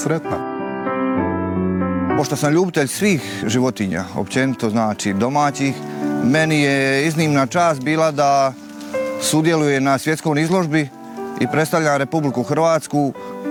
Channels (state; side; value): identical; both; correlation 1.00